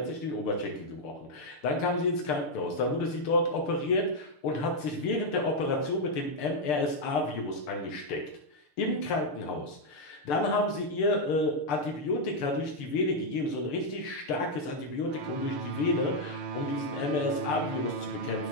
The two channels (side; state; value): right; late; 6.7 ms